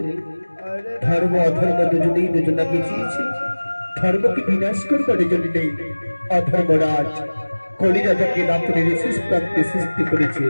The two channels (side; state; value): both; inverted; correlation -1.00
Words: ধর্ম অধর্ম দুজনেই দুজনা পিছিয়েছে ধর্মকে বিনাশ করবার জন্য নেই অধর্মরাজ কলি রাজাকে রাত্রির শেষ প্রান্তে সৃষ্টি করেছে